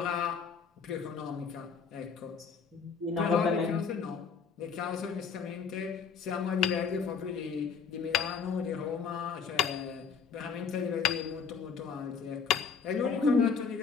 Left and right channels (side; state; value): right; quieter; 5.8 dB